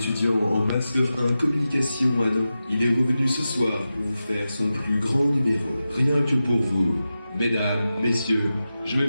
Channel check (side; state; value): both; inverted; correlation -0.92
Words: en Master 1 Communication à Nantes, il est revenu ce soir pour vous faire son plus grand numéro. Rien que pour vous. Mesdames, messieurs, je vais